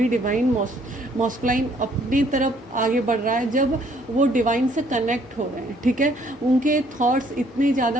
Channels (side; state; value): both; normal; correlation 0.64